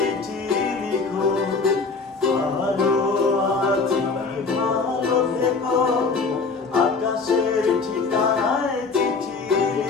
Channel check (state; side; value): quieter; right; 4.4 dB